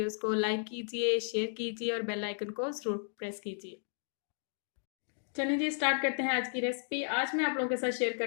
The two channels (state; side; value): silent; right; digital silence